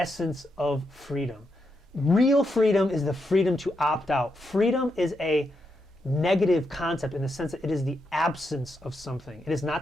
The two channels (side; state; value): both; normal; correlation 0.83